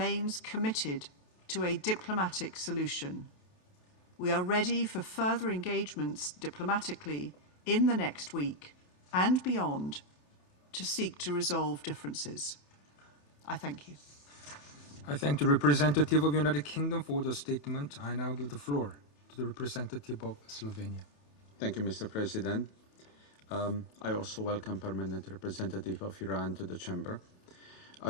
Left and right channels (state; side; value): late; right; 31 ms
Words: committed to a diplomatic solution. We are ready for further engagements diplomatically in the next week and beyond to seek to resolve differences. I thank you. I thank the representative of the United Kingdom for the statement. I now give the floor to the representative of Slovenia. Thank you, Mr. President. I also welcome Permanent Representative of Iran to the Chamber.